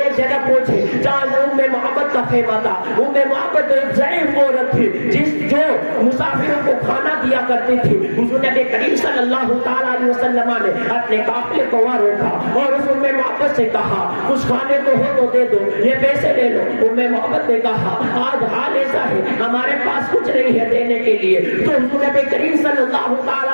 جگہ پہنچے جہاں محبت کا خیمہ تھا۔ محبت ایک ضعیف عورت تھی جو مسافروں کو کھانا دیا کرتی تھی۔ حضور نبی کریم صلی اللہ تعالیٰ علیہ وسلم نے اپنے قافلے کو وہاں روکا اور اس محبت سے کہا کچھ کھانے کو ہو تو دے دو، یہ پیسے لے لو۔ محبت نے کہا آج حال ایسا ہے ہمارے پاس کچھ نہیں ہے دینے کے لیے۔ تو حضور نبی کریم صلی اللہ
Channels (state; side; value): inverted; both; correlation -1.00